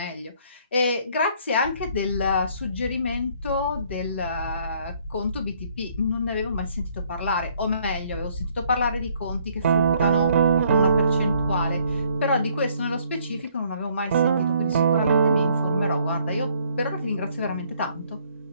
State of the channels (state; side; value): inverted; both; correlation -0.64